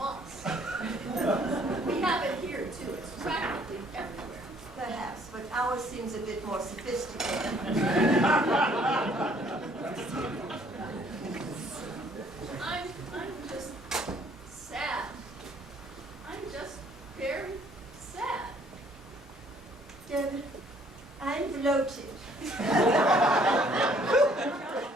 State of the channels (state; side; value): normal; both; correlation 0.62